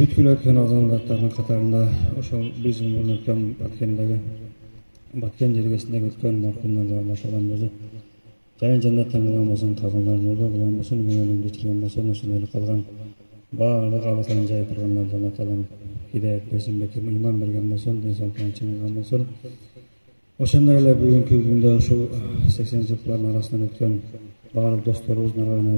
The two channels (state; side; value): inverted; both; correlation -1.00